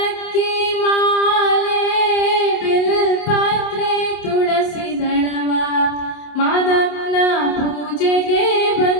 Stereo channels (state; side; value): late; right; 27 ms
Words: ಮಾಲೆ ಬಿಲ್ಪತ್ರೆ ತುಳಸಿ ದಳವ ಮಾದಪ್ಪನ ಪೂಜೆಗೆ